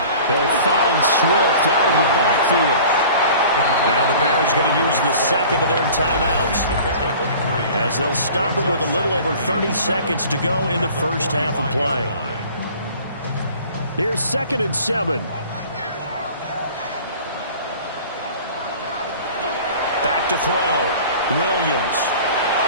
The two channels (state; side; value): inverted; both; correlation -0.45